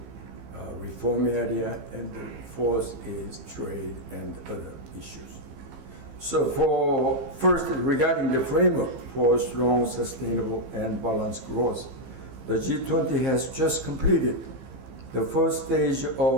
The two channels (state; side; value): late; left; 15 ms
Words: reform area, and the 4th is trade and other issues. So first, regarding the framework for strong, sustainable, and balanced growth, the G20 has just completed the first stage